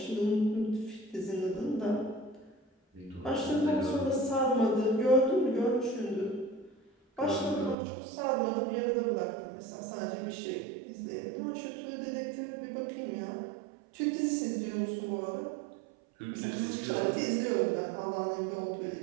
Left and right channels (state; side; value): drops out; left; at 7.8 s